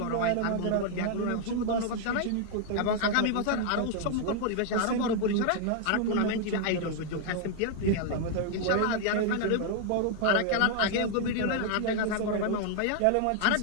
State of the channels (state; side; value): different; both; correlation 0.00